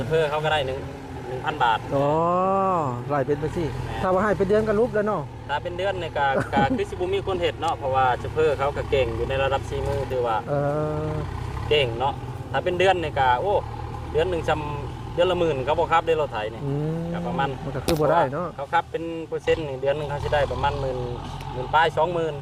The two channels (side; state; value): both; identical; correlation 1.00